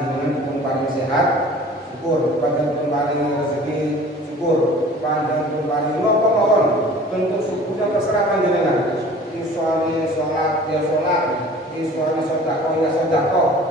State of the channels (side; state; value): both; normal; correlation 0.46